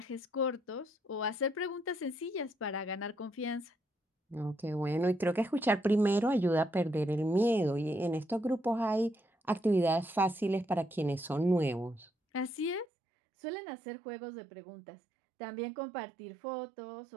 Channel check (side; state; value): left; drops out; at 12.9 s